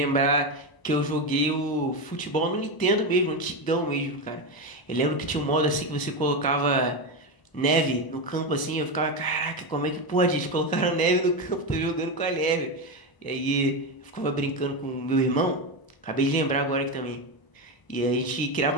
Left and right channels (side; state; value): right; late; 1.0 ms